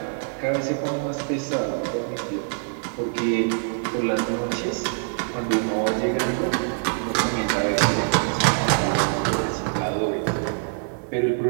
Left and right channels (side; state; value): left; silent; 58 dB below the other